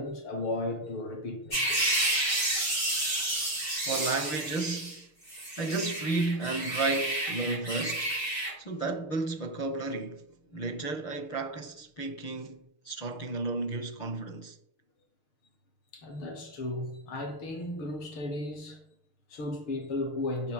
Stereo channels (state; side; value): late; right; 6.5 ms